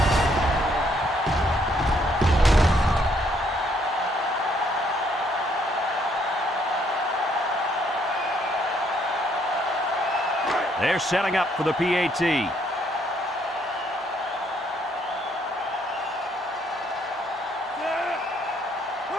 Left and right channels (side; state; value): both; normal; correlation 0.69